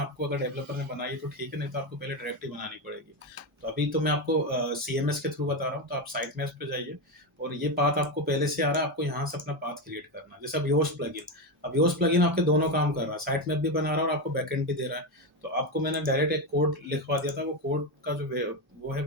अगर डेवलपर ने बनाई तो ठीक है, नहीं तो आपको पहले डायरेक्टरी बनानी पड़ेगी। तो अभी तो मैं आपको सीएमएस के थ्रू बता रहा हूँ। तो आप साइट मैप्स पे जाइए, और ये पाथ आपको पहले से आ रहा है, आपको यहाँ से अपना पाथ क्रिएट करना है। जैसे अब योस्ट प्लगइन, अब योस्ट प्लगइन आपके दोनों काम कर रहा है, साइट मैप भी बना रहा है और आपको बैकएंड भी दे रहा है। तो आपको मैंने डायरेक्ट एक कोड लिखवा दिया था, वो कोड का जो वो है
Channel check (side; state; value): both; normal; correlation 0.12